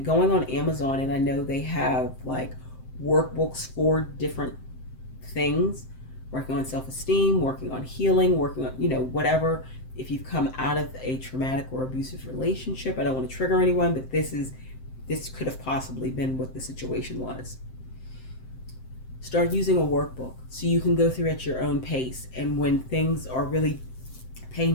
Going on Amazon, and I know they have like workbooks for different things, working on self-esteem, working on healing, working on, whatever. If you've come out of a traumatic or abusive relationship, I don't want to trigger anyone, but this could have possibly been what the situation was. Start using a workbook so you can go through at your own pace, and when things are really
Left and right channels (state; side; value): late; right; 7.7 ms